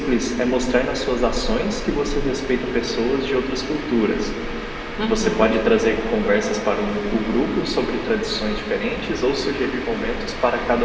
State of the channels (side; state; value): both; identical; correlation 1.00